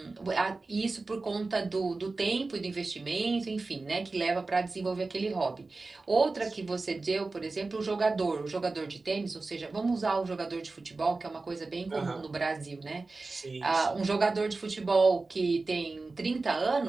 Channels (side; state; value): left; quieter; 3.6 dB